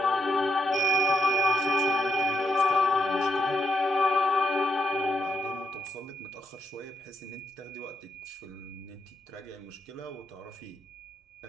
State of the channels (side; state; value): both; normal; correlation 0.79